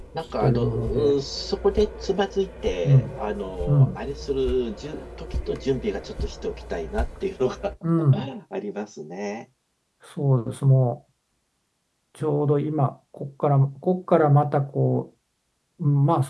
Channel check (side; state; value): both; identical; correlation 1.00